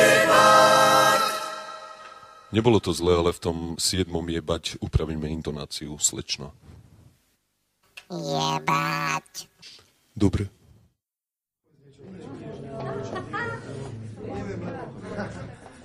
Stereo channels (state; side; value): identical; both; correlation 1.00